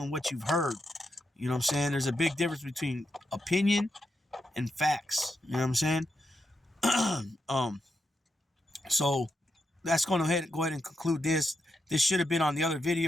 what you've heard. You know what I'm saying? There's a big difference between opinion and facts. You know what I'm saying? So that's going to go ahead and conclude this. This should have been on the other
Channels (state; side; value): normal; both; correlation 0.84